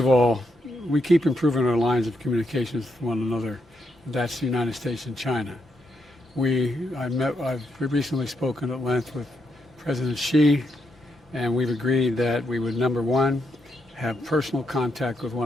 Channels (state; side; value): normal; both; correlation 0.80